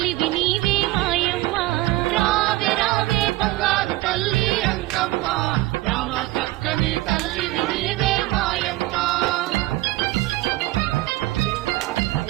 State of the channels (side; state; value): left; quieter; 18.8 dB